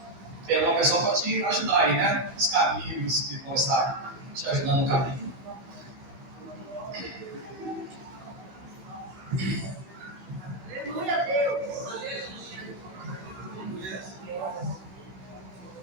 Tem alguma pessoa que pode te ajudar aí, né? Os caminhos que vão estar te ajudando no caminho. Aleluia, Deus.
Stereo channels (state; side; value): late; left; 16 ms